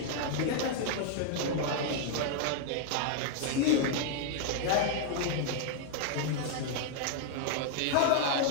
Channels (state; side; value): different; both; correlation 0.00